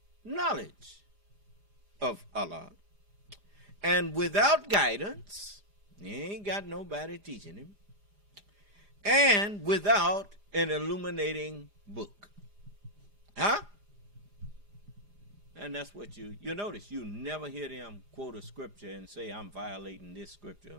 knowledge of Allah and without guidance. He ain't got nobody teaching him. And without an illuminating book. Huh? And that's what you notice. You never hear them quote a scripture and say, I'm violating this scripture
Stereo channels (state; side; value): late; left; 4.9 ms